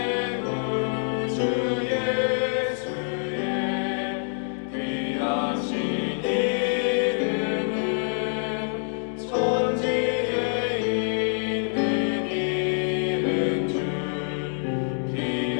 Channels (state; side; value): silent; right; digital silence